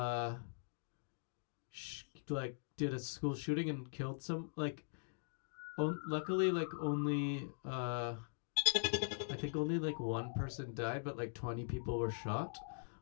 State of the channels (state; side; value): silent; right; digital silence